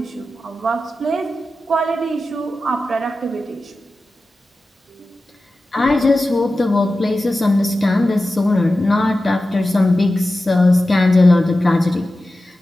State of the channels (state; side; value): normal; both; correlation 0.94